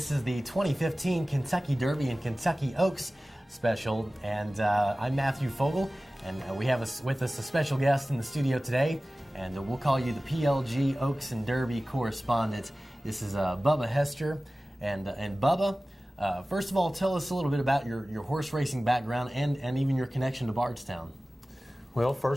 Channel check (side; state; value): both; normal; correlation 0.97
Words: is the 2015 Kentucky Derby and Kentucky Oaks special. And I'm Matthew Fogle, and we have with us a special guest in the studio today, and we'll call you the PLG Oaks and Derby correspondent. This is Bubba Hester, and Bubba. First of all, tell us a little bit about your horse racing background and even your connection to Bardstown. Well,